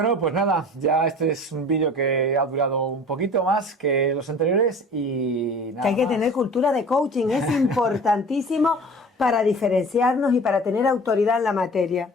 pues nada, ya este es un vídeo que ha durado un poquito más que los anteriores y nada. Que hay que tener cultura de coaching, es importantísimo para diferenciarnos y para tener autoridad en la materia.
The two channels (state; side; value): normal; both; correlation 0.42